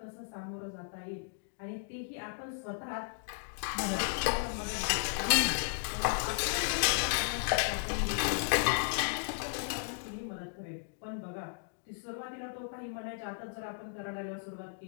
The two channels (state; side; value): silent; right; digital silence